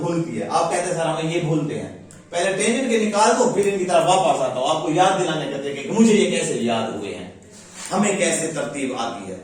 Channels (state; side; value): identical; both; correlation 1.00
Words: है। आप कहते हैं सर हमें ये भूलते हैं, पहले टेंजेंट के निकाल दो फिर इनकी तरफ वापस आता हूं, आपको याद दिलाने करते कि मुझे ये कैसे याद हुए हैं, हमें कैसे तरतीब आती है,